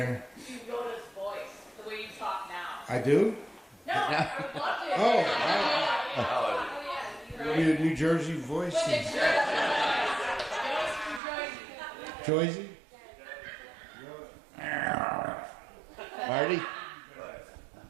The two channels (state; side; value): drops out; left; at 11.2 s